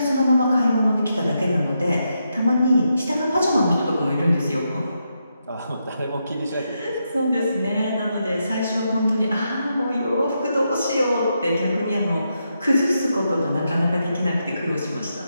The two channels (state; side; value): inverted; both; correlation -0.83